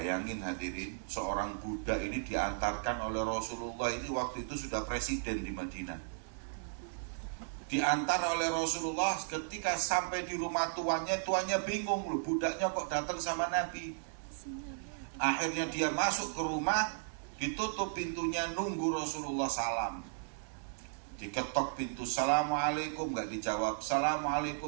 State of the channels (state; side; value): silent; left; 54 dB below the other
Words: hadirin, seorang budak ini diantarkan oleh Rasulullah, ini waktu itu sudah presiden di Madinah. Diantar oleh Rasulullah, ketika sampai di rumah tuannya bingung loh, budaknya kok datang sama Nabi. Akhirnya dia masuk ke rumah, ditutup pintunya, nunggu Rasulullah salam. Diketok pintu, Assalamualaikum, gak dijawab.